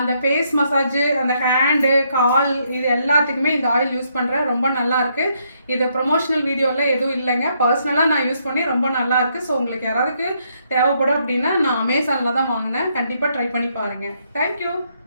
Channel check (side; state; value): both; inverted; correlation -0.74